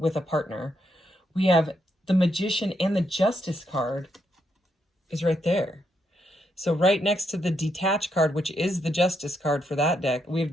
a partner. We have the Magician, and the Justice card is right there. So right next to the Detached card, which is the Justice card for that deck, we have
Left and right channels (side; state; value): both; normal; correlation 0.78